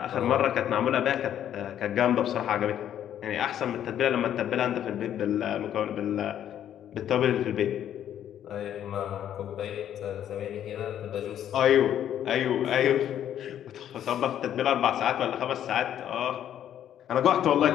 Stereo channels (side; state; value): right; quieter; 10.5 dB